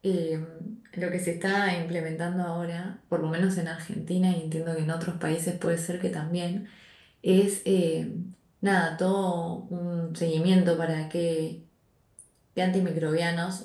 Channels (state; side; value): identical; both; correlation 1.00